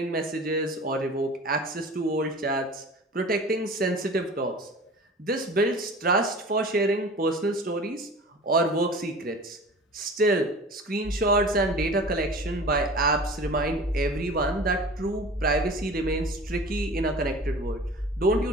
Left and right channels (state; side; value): normal; both; correlation 0.40